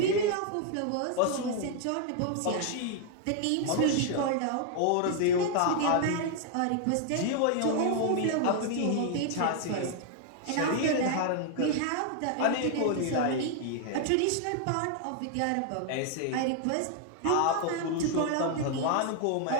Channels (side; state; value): both; different; correlation 0.00